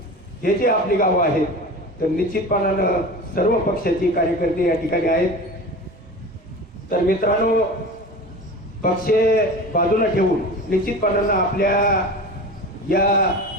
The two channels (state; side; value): normal; both; correlation 0.32